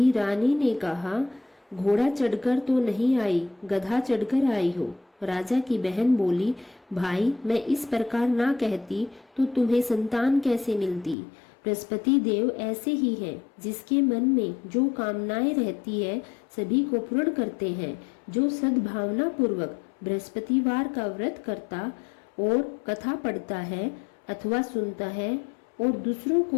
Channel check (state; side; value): drops out; right; at 11.2 s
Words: रानी ने कहा, घोड़ा चढ़कर तो नहीं आई, गधा चढ़कर आई हो। राजा की बहन बोली, भाई, मैं इस प्रकार ना कहती तो तुम्हें संतान कैसे मिलती। बृहस्पति देव ऐसे ही हैं, जिसके मन में जो कामनाएं रहती है सभी को पूर्ण करते हैं। जो सद्भावना पूर्वक बृहस्पतिवार का व्रत करता और कथा पढ़ता है अथवा सुनता है और दूसरों